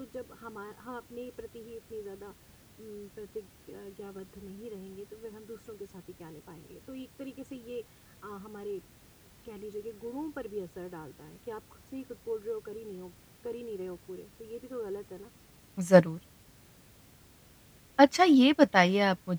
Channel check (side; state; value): both; identical; correlation 1.00